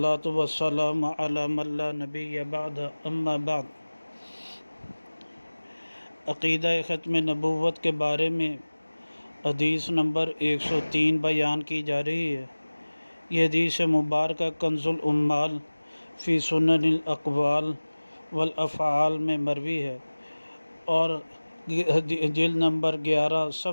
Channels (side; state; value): both; inverted; correlation -1.00